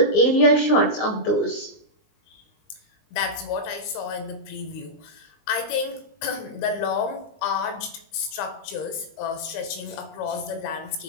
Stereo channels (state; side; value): late; right; 19 ms